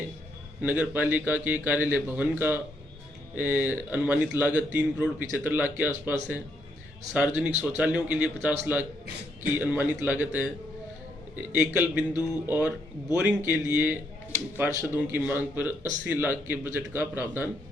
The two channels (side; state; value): both; normal; correlation 0.75